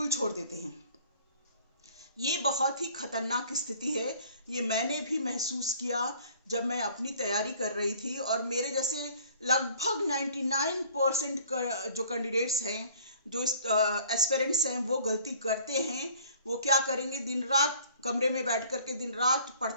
छोड़ देते हैं। ये बहुत ही खतरनाक स्थिति है। ये मैंने भी महसूस किया जब मैं अपनी तैयारी कर रही थी, और मेरे जैसे लगभग 99% जो कैंडिडेट्स हैं, जो एस्पिरेंट्स हैं, वो गलती करते हैं। वो क्या करेंगे, दिन रात कमरे में बैठ करके दिन रात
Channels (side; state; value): both; inverted; correlation -0.53